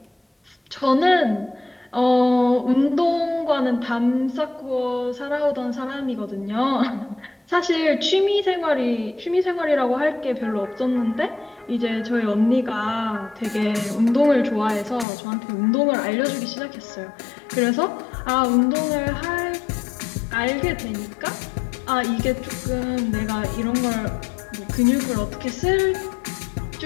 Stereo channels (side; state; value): right; drops out; at 15.1 s